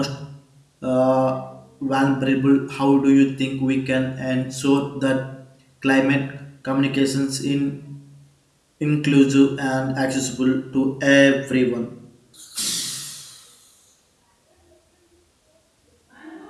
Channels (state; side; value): identical; both; correlation 1.00